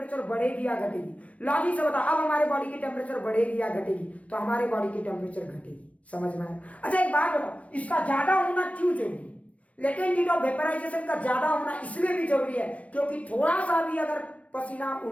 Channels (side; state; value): right; late; 0.065 ms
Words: बढ़ेगी या घटेगी? लॉजिक से बता, अब हमारे बॉडी की टेम्परेचर बढ़ेगी या घटेगी? तो हमारे बॉडी की टेम्परेचर घटेगी। समझ में आया? अच्छा एक बात बताओ, इसका ज्यादा होना क्यों जरूरी? लेटेंट हीट ऑफ वेपराइजेशन का ज्यादा होना इसलिए भी जरूरी है क्योंकि थोड़ा सा भी अगर पसीना